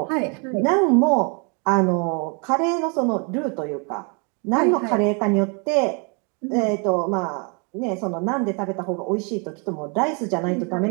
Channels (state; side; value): quieter; left; 35.2 dB